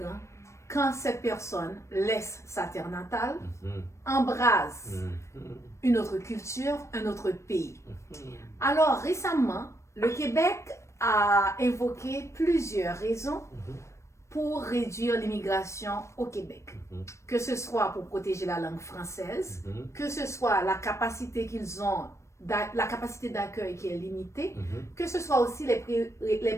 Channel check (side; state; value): right; late; 0.14 ms